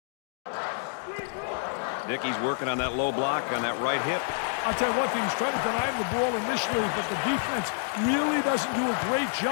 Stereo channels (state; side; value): silent; right; digital silence